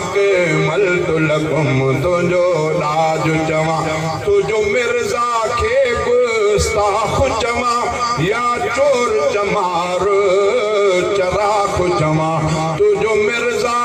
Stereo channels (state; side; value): identical; both; correlation 1.00